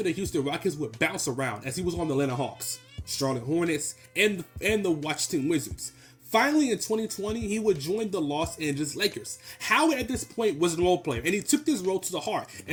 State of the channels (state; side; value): identical; both; correlation 1.00